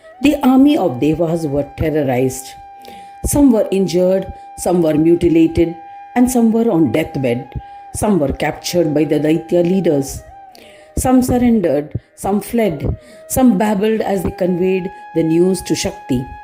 the army of Devas were terrorized. Some were injured, some were mutilated, and some were on deathbed. Some were captured by the Daitya leaders. Some surrendered, some fled, some babbled as they conveyed the news to Shakti.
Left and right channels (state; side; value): identical; both; correlation 1.00